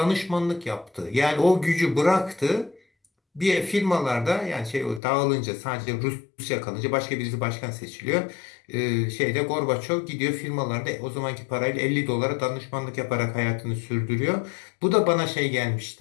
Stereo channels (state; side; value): drops out; right; at 5.0 s